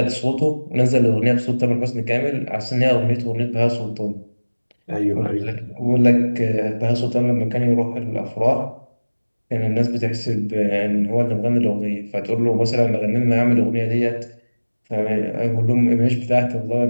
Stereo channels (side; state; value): both; inverted; correlation -1.00